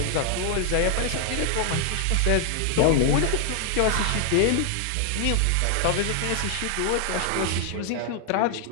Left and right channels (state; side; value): different; both; correlation 0.00